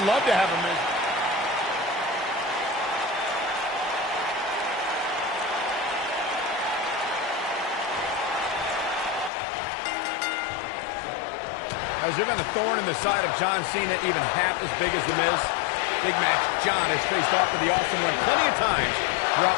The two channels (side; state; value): right; drops out; at 9.3 s